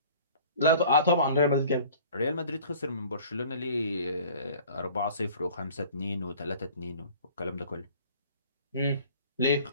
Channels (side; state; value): both; inverted; correlation -0.48